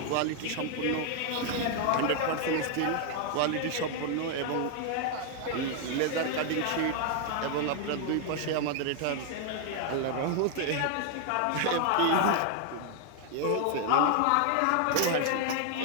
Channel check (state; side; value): different; both; correlation 0.00